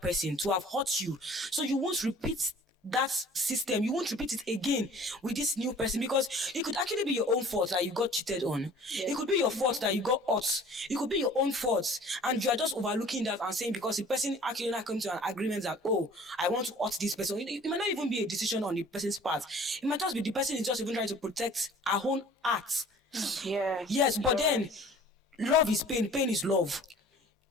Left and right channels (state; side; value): normal; both; correlation 0.49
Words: person to have hurt you. So you won't repeat that system, you won't repeat it again with this new person, because it could actually be your own fault that you got cheated on. It could be your fault that you got hurt. It could be your own fault, and you are just overlooking that and saying because the person actually not come to an agreement that, oh, I want to hurt this person. It might not even be a decision on the person's part. It might just be the person is just even trying to protect her own heart. Yeah. Yes, but then love is pain, pain is love.